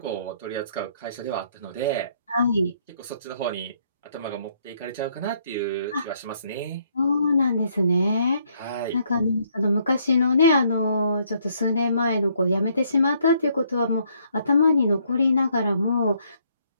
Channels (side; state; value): both; inverted; correlation -0.69